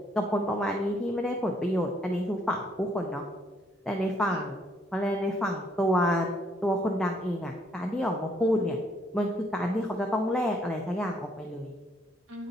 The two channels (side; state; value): both; normal; correlation 0.69